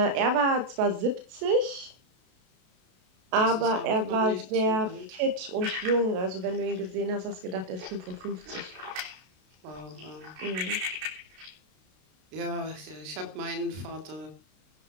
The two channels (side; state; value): left; late; 32 ms